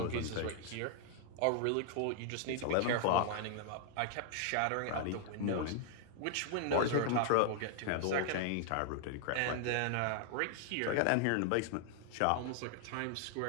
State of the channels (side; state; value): both; different; correlation 0.00